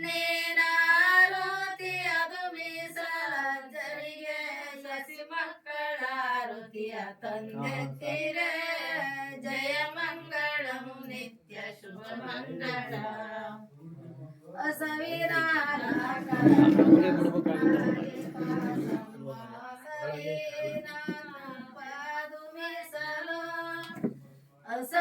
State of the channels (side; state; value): both; identical; correlation 1.00